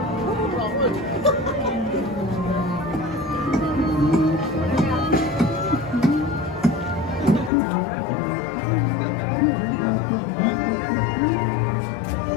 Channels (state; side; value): drops out; right; at 7.5 s